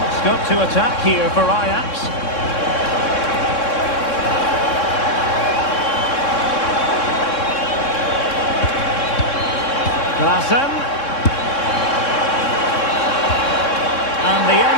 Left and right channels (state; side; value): late; right; 3.6 ms